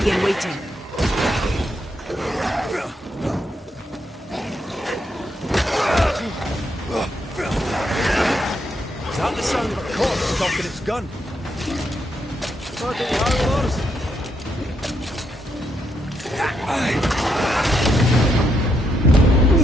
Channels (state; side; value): normal; both; correlation 0.78